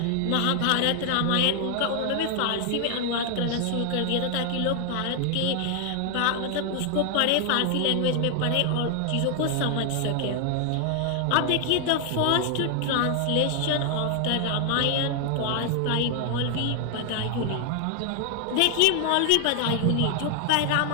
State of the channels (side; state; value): both; different; correlation 0.00